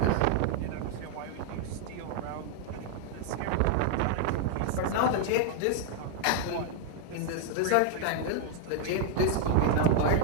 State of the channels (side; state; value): both; different; correlation 0.00